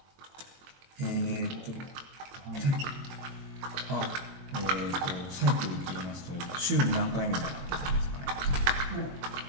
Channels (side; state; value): left; late; 22 ms